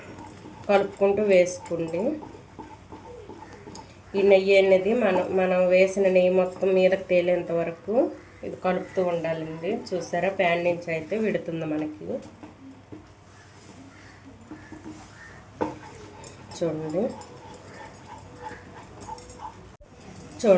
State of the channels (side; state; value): both; identical; correlation 1.00